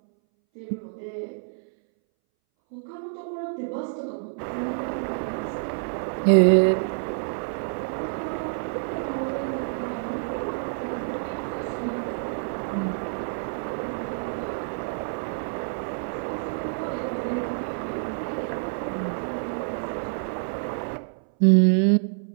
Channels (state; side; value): silent; left; 60 dB below the other